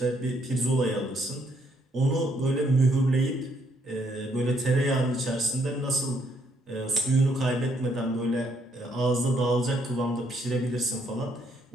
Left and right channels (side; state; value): both; normal; correlation 0.71